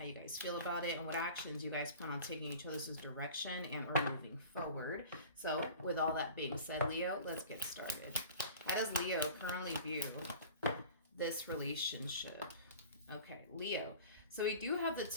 you guys feel about it and what actions you guys plan on taking each other's direction and or moving forward. So with all that being said, Leo, let's get started. How does Leo currently view this relationship? Okay, Leo. So we do have the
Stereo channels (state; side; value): inverted; both; correlation -0.41